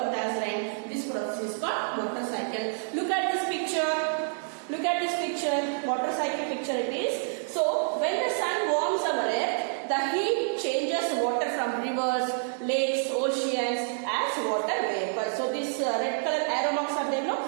as rain. This process is called water cycle. Look at this picture. Look at this picture, water cycle picture it is. So, when the sun warms our earth, the heat changes water from rivers, lakes, oceans as water vapor. So, this red color arrow marks are there,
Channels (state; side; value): silent; left; digital silence